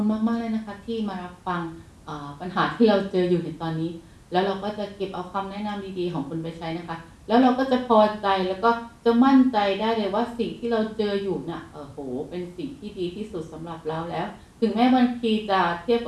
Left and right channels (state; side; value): identical; both; correlation 1.00